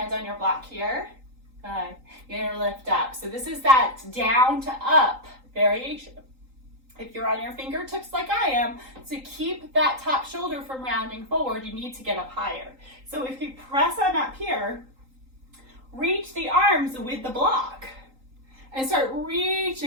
on your block here. Good. You're gonna lift up. So this is that down to up variation. If you're on your fingertips like I am, to keep that top shoulder from rounding forward, you need to get up higher. So if you press on up here, reach the arms with the block and start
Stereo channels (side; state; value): left; late; 3.8 ms